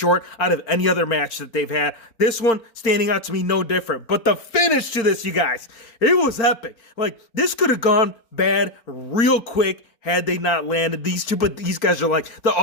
out of any other match that they've had. This one standing out to me no different. But the finish to this, you guys, it was epic. Like, this could have gone bad real quick had they not landed these two, but these guys are like the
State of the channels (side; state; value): right; late; 4.4 ms